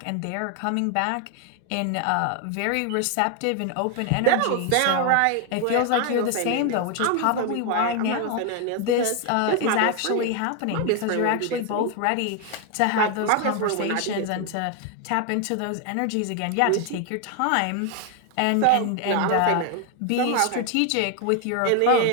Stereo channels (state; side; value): different; both; correlation 0.01